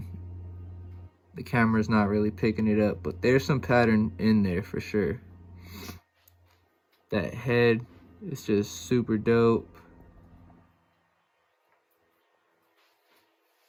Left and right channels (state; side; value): identical; both; correlation 1.00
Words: the camera's not really picking it up, but there's some pattern in there for sure. That head is just super dope.